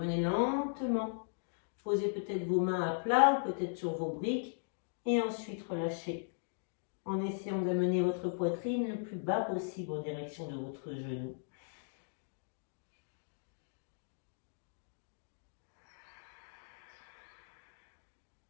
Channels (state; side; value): silent; right; digital silence